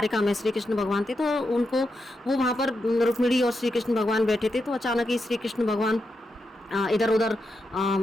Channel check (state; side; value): normal; both; correlation 0.86